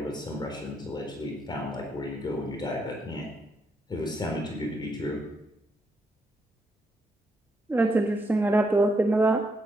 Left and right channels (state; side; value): normal; both; correlation 0.78